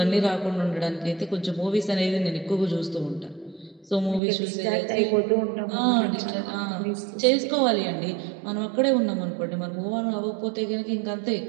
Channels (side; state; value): left; drops out; at 4.2 s